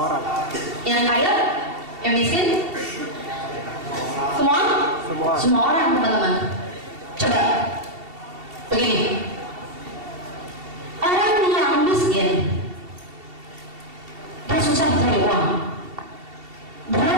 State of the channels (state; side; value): late; left; 2.7 ms